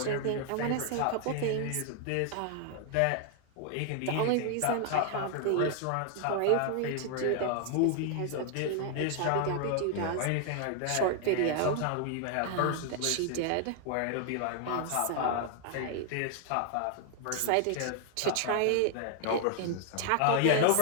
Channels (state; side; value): different; both; correlation 0.00